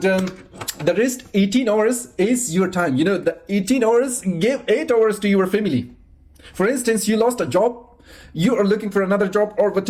the rest 18 hours is your time. The 18 hours, give 8 hours to your family. For instance, you lost a job, you are looking for another job, or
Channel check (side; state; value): both; identical; correlation 1.00